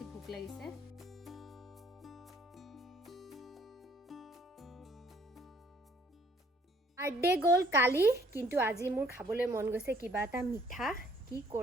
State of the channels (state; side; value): normal; both; correlation 0.61